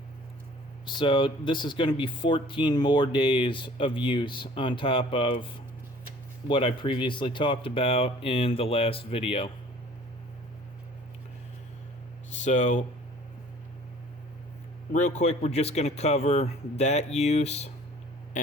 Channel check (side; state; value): both; normal; correlation 0.51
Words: So this is going to be 14 more days of use on top of what I previously talked about in the last video. So real quick, we're just going to cover that use